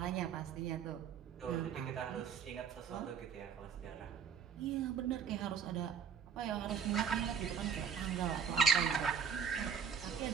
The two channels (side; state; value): left; quieter; 7.0 dB